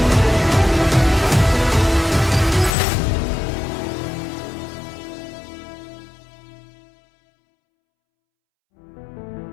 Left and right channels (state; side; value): drops out; right; at 2.8 s